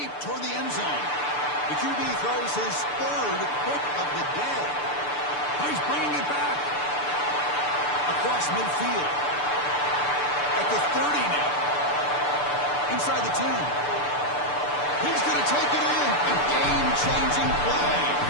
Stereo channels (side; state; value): right; late; 6.8 ms